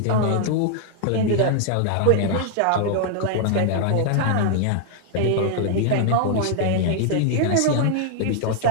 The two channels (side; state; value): both; different; correlation 0.00